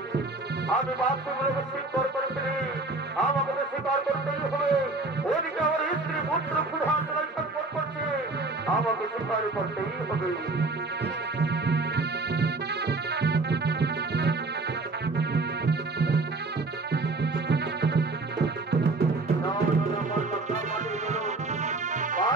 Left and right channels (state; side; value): quieter; left; 3.3 dB